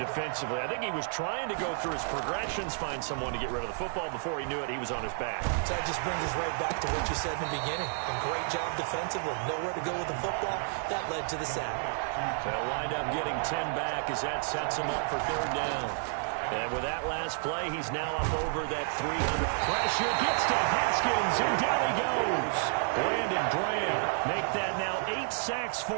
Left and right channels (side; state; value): left; silent; 57 dB below the other